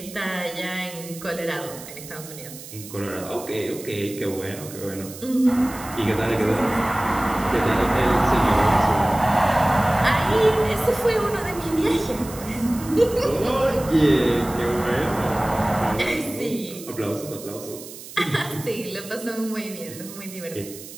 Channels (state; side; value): noise; right; hiss, 15 dB below the sound